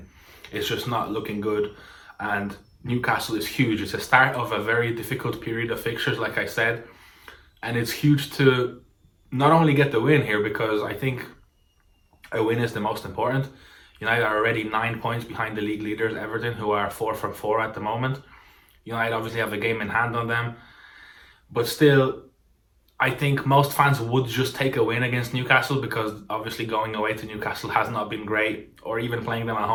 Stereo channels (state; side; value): identical; both; correlation 1.00